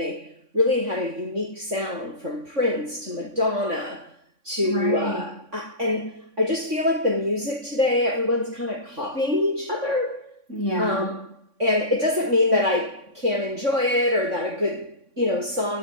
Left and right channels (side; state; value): left; late; 3.6 ms